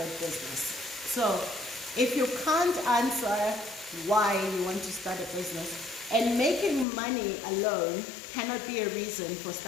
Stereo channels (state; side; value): drops out; right; at 6.9 s